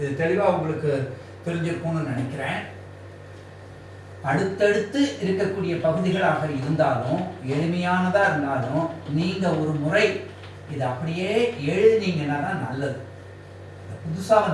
தெளிவா உங்களுக்கு தெரிஞ்சிருக்கும்னு நினைக்கிறேன். அடுத்தடுத்து இருக்கக்கூடிய பகுதிகளாக இருந்தாலும் எளிமையானதா இருந்தாலும் நீங்க ஒரு முறை இதை அப்படியே எழுதினீங்கன்னா தான் நல்லது. புதுசா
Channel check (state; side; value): identical; both; correlation 1.00